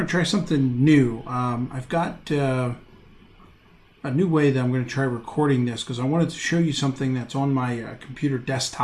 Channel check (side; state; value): both; identical; correlation 1.00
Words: to try something new. I've got a new way that I'm going to try recording this because I wanted to show you something that's on my computer